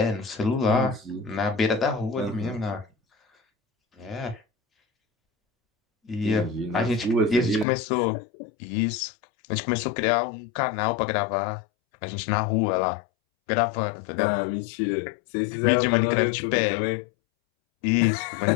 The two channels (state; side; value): drops out; right; at 7.7 s